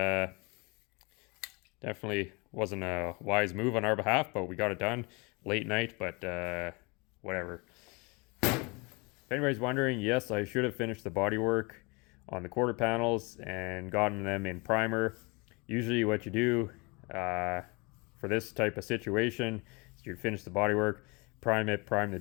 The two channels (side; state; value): right; quieter; 28.3 dB